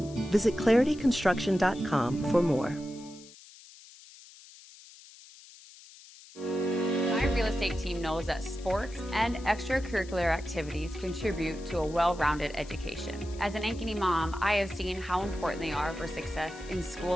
Visit clarityconstruction.com for more. Real estate team knows that sports and extracurricular activities contribute to a well-rounded education. As an Ankeny mom, I have seen how important they are for success in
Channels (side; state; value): left; noise; hiss, 20 dB below the sound